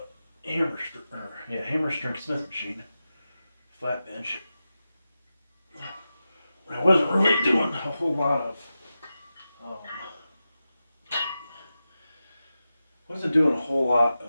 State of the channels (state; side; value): inverted; both; correlation -0.92